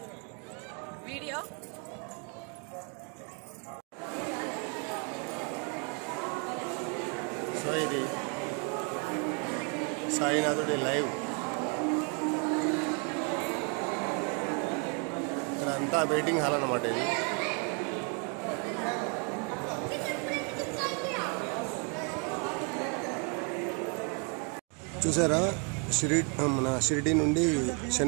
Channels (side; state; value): left; quieter; 36.5 dB